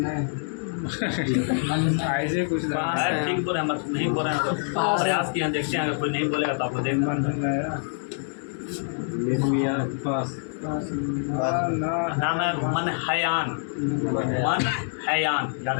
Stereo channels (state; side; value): silent; right; digital silence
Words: ऐसे कुछ अरे ठीक बोल रहे हैं, हम नहीं बोल रहे हैं तो प्रयास किए हैं, देखते हैं अगर कोई नहीं बोलेगा तो आपको देखना निर्मिया पास नाम है मनहयान। मनहयान याद